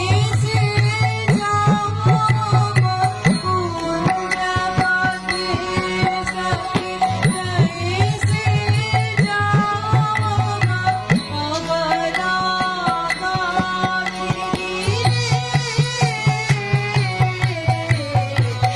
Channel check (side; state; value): both; identical; correlation 1.00